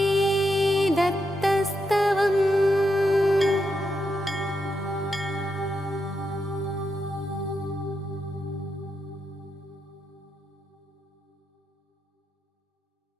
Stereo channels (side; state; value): both; normal; correlation 0.83